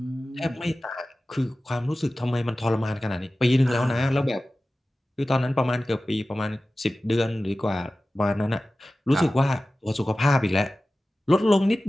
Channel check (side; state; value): both; normal; correlation 0.95